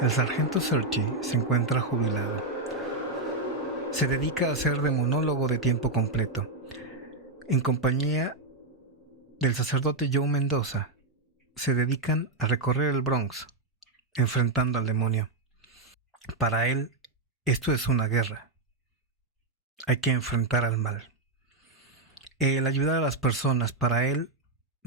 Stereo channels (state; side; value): quieter; left; 3.1 dB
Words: el sargento Serchi se encuentra jubilado. Se dedica a ser demonólogo de tiempo completo, en compañía del sacerdote Joe Mendoza. Se dedican a recorrer el Bronx, enfrentando al demonio. Para él, esto es una guerra. Hay que enfrentar al mal. El ayudar a las personas, para él,